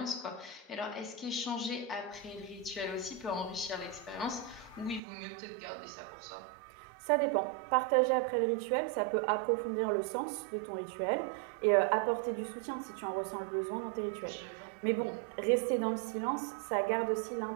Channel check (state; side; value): drops out; left; at 5.0 s